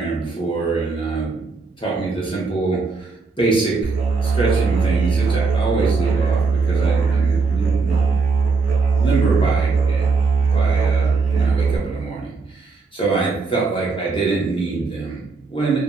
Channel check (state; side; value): quieter; left; 4.3 dB